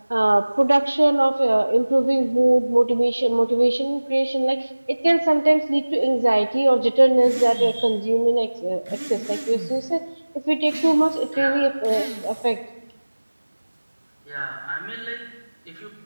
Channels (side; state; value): both; inverted; correlation -1.00